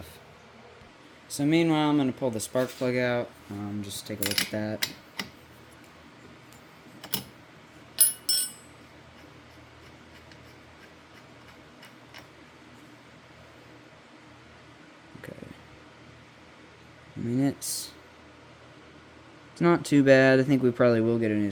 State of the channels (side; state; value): both; identical; correlation 1.00